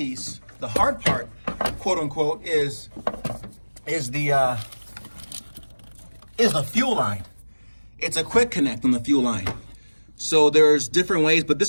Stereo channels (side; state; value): both; inverted; correlation -1.00